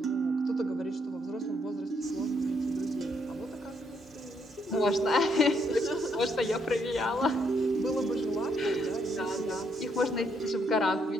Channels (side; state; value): both; normal; correlation 0.74